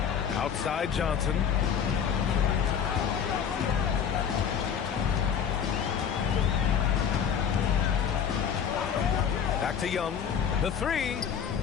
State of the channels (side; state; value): right; quieter; 7.7 dB